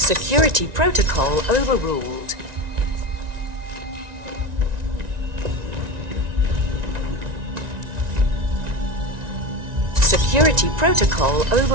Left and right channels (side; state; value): left; late; 1.9 ms